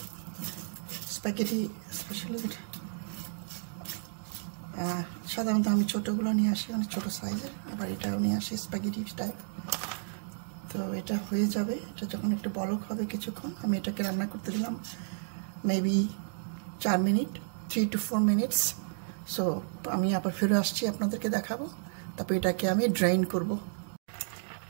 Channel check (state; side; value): silent; left; digital silence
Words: স্প্যাগেটি স্পেশালি সাধারণত আমি ছোটোগুলো নিয়ে আসি, অনেক ছোটো সাইজের। এবার এটাও নিয়ে আসি স্প্যাগেটি টাইপ। তো এটা হয়ে যাবে। এটা যখন একটু বলক হবে কিছুক্ষণ, আমি এটাকে রান্না করতে দিলাম maybe 4 minute, 3 to 4 minutes. So আমি আবার ফিরে আসছি, আপনাদেরকে দেখাবো। তারপর এটাকে আমি ড্রাইন করব।